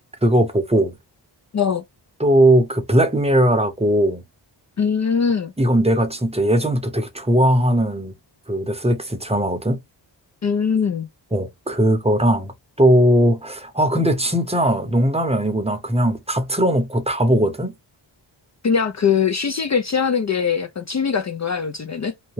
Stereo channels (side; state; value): both; normal; correlation 0.56